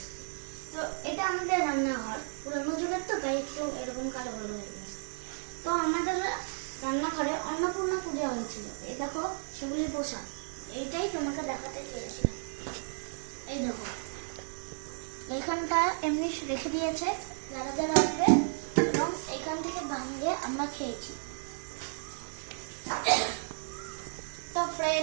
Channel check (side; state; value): left; silent; digital silence